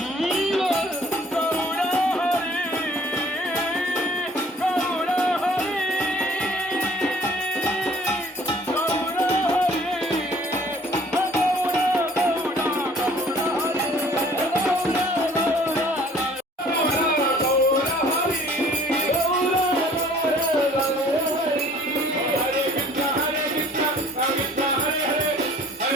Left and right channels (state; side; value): normal; both; correlation 0.54